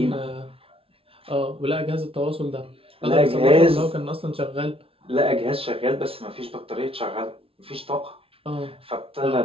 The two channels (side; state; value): left; late; 0.27 ms